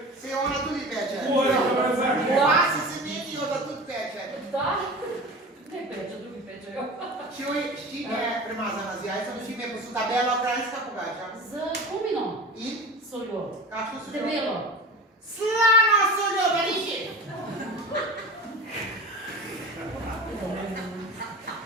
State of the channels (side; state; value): both; normal; correlation 0.34